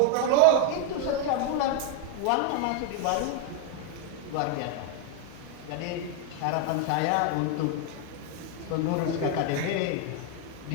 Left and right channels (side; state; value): both; different; correlation 0.01